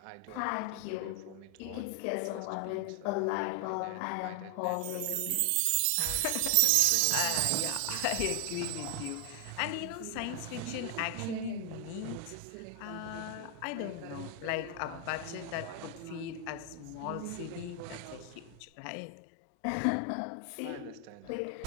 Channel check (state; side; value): different; both; correlation 0.00